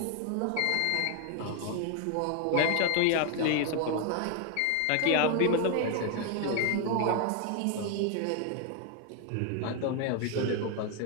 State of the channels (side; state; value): both; different; correlation 0.01